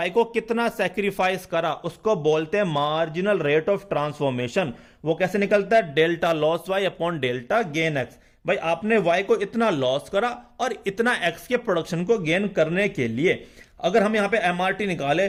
को कितना सैक्रिफाइस करा, उसको बोलते हैं मार्जिनल रेट ऑफ ट्रांसफॉर्मेशन। वो कैसे निकलता है? Delta loss Y upon delta gain X। भाई आपने Y को इतना लॉस करा और इतना X के प्रोडक्शन को गेन करने के लिए। अगर हम यहां पे एमआरटी निकाले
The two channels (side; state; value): both; identical; correlation 1.00